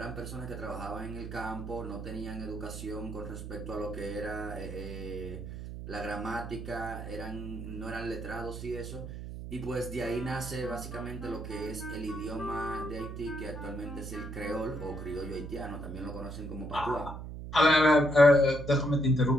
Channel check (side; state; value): right; noise; hum, 8 dB below the sound